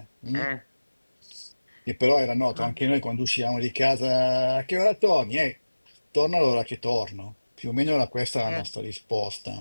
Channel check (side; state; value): both; inverted; correlation -1.00